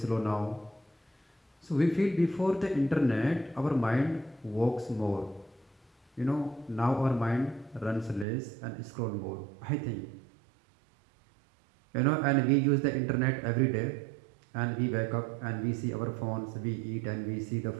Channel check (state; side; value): drops out; left; at 8.2 s